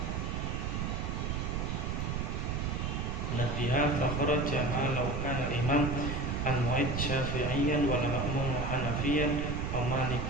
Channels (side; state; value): right; noise; rumble, 1 dB below the sound